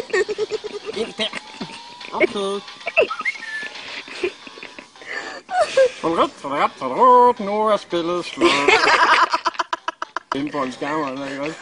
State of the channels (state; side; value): identical; both; correlation 1.00